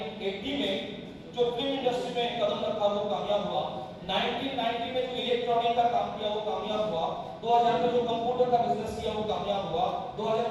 में जो फिल्म इंडस्ट्री में कदम रखा वो कामयाब हुआ। 1990 में जो इलेक्ट्रॉनिक का काम किया वो कामयाब हुआ। 2000 में जो कंप्यूटर का बिजनेस किया वो कामयाब हुआ।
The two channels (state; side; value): identical; both; correlation 1.00